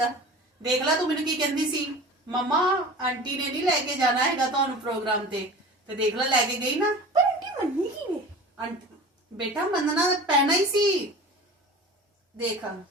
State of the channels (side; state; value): both; normal; correlation 0.38